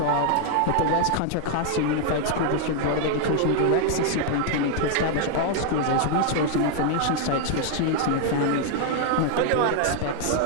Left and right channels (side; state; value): both; different; correlation 0.00